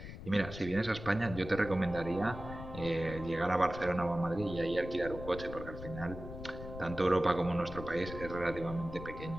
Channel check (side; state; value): left; noise; rumble, 11 dB below the sound